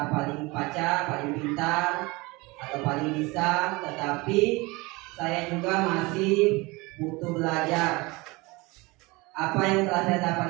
paling paca, paling pintar atau paling bisa, tetapi saya juga masih butuh belajar. Apa yang telah saya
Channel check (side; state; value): left; quieter; 23.8 dB